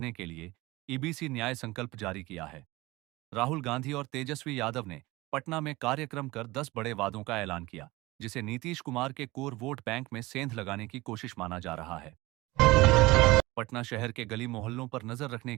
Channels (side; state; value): left; quieter; 20.7 dB